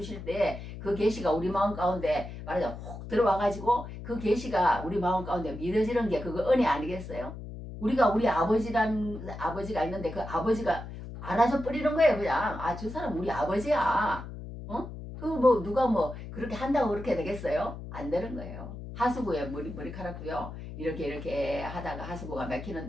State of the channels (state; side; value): noise; left; hum, 10 dB below the sound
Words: 때 그 계시가 우리 마음 가운데 말하자면 혹 들어와가지고 그 계시가 우리 마음 가운데 믿어지는 게 그거 은혜 아니겠어요? 우리 아버지가 있는데 그 아버지가 알아서 뿌리는 거예요. 그냥 저 사람 우리 아버지야. 뭐 누가 뭐 그렇게 한다고 그렇게 되겠어요? 안 되는 거예요. 하수구에 머리카락도요. 이렇게 하다가 하수구가